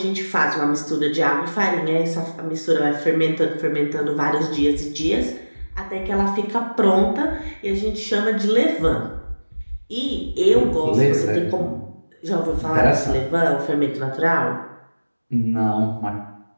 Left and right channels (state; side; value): inverted; both; correlation -1.00